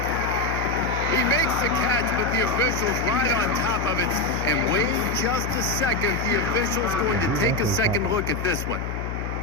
He makes the catch, but the official's right on top of it. And wait just a second. The official's going to take a second look at this one.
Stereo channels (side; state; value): left; noise; hum, 5 dB below the sound